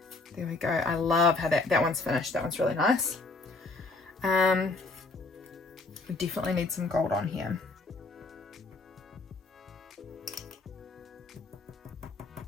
there we go. I love how that one's finished. That one's really nice. We definitely need some gold on here.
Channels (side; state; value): right; quieter; 3.4 dB